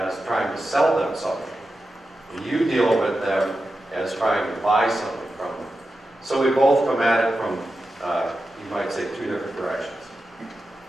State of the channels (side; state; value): both; normal; correlation 0.91